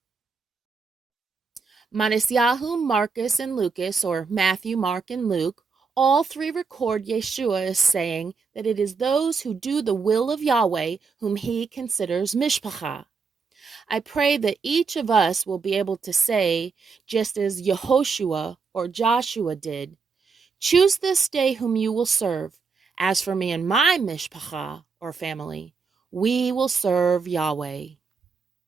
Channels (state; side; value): quieter; left; 5.0 dB